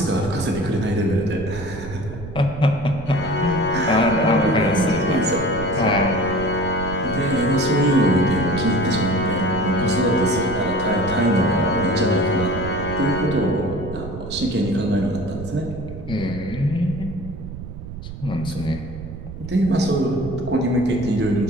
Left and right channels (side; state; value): right; noise; rumble, 11 dB below the sound